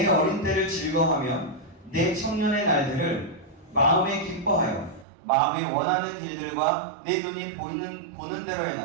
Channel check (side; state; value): left; drops out; at 5.1 s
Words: 어린 때를 즐거워하며 내 청년의 날들을 마음에 기뻐하여 마음이 원하는 길들과 내 눈이 보는 대로